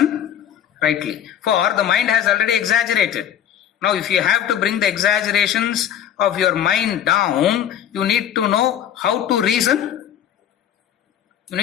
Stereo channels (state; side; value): quieter; right; 10.0 dB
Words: rightly. For the mind has already exaggerated. Now if you have to bring the exaggerations of your mind down, you need to know how to reason. You